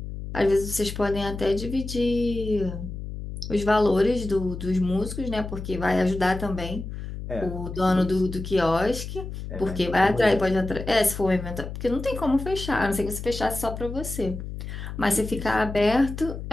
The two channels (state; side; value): noise; left; hum, 8 dB below the sound